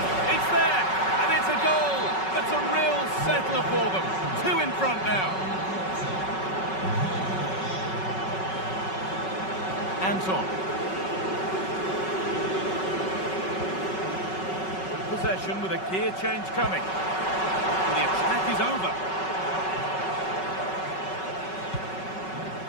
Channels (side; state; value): right; late; 5.3 ms